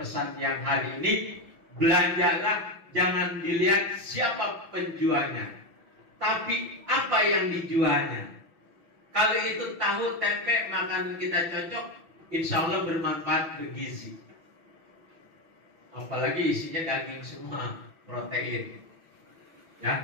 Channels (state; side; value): late; left; 6.1 ms